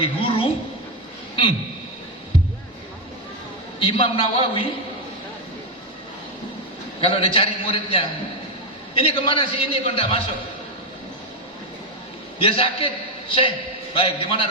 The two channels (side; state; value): both; normal; correlation 0.06